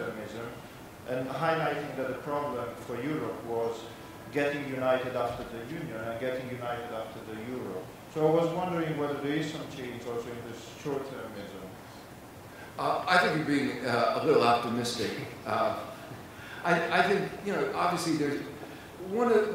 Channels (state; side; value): identical; both; correlation 1.00